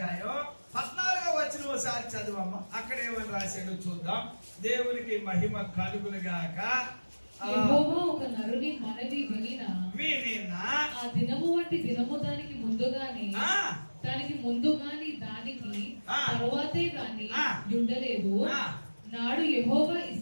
14వ వచనం ఒకసారి చదవమ్మ. అక్కడ ఏమని రాశాడో చూద్దాం. దేవునికి మహిమ కలుగునుగాక. యెహోవా ఒక నరుని మనవి వినినా ఆ దినము వంటి దినము దానికి ముందుగాని దానికి తరువాతే గాని ఉండలేదు. నాడు యెహోవా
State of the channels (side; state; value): both; inverted; correlation -1.00